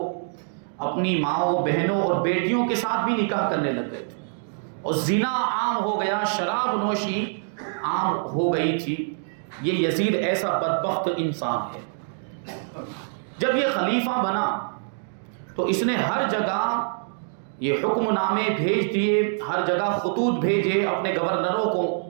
اپنی ماؤں، بہنوں اور بیٹیوں کے ساتھ بھی نکاح کرنے لگ گئے تھے، اور زنا عام ہو گیا، شراب نوشی عام ہو گئی تھی۔ یہ یزید ایسا بدبخت انسان ہے۔ جب یہ خلیفہ بنا تو اس نے ہر جگہ یہ حکم نامے بھیج دیے، ہر جگہ خطوط بھیجے اپنے گورنروں کو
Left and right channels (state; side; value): silent; left; digital silence